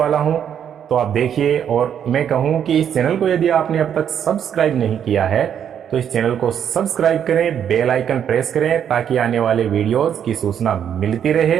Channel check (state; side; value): quieter; left; 8.8 dB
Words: हूँ। तो आप देखिए, और मैं कहूँ कि इस चैनल को यदि आपने अब तक सब्सक्राइब नहीं किया है तो इस चैनल को सब्सक्राइब करें, बेल आइकन प्रेस करें ताकि आने वाले वीडियोस की सूचना मिलती